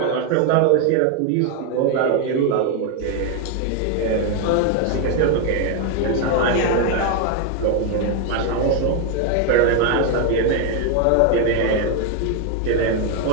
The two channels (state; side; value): different; both; correlation 0.01